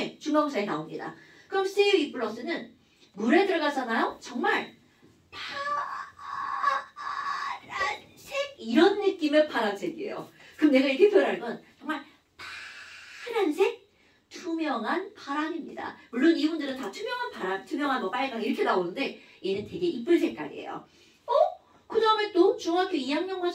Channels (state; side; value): identical; both; correlation 1.00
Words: 중간고사에 나옵니다. 그럼 CU2+는 물에 들어가잖아요. 정말 파란색 이런 느낌의 파란색이에요. 그럼 내가 이렇게 표현할 건 정말 파란색 투명한 파랑입니다. 물론 이분들은 다 투명한 파랑, 투명한 뭐 빨강 이렇게 나오는데 얘는 되게 이쁜 색깔이에요. 그 다음에 또 중학교 2학년